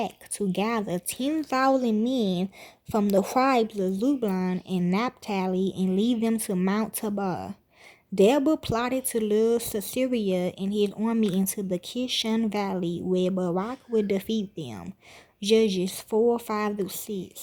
to gather 10,000 men from the tribes of Zebulun and Naphtali and lead them to Mount Tabor. Deborah plotted to lure Sisera and his army into the Kishon Valley, where Barak would defeat them. Judges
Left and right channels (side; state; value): both; identical; correlation 1.00